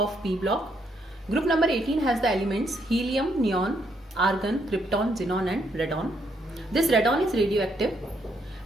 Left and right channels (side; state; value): both; normal; correlation 0.74